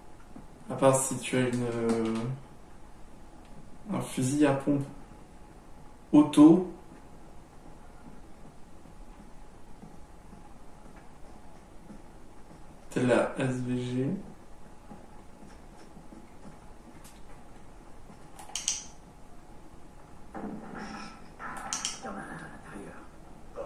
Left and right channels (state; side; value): identical; both; correlation 1.00